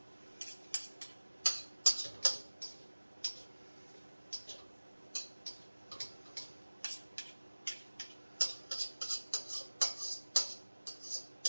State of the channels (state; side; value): inverted; both; correlation -1.00